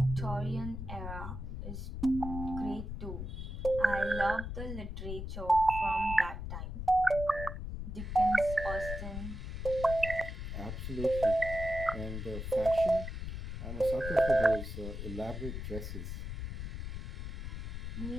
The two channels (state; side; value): noise; left; rumble, 6 dB below the sound